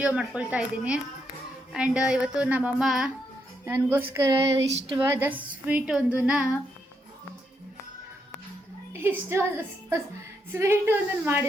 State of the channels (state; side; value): normal; both; correlation 0.79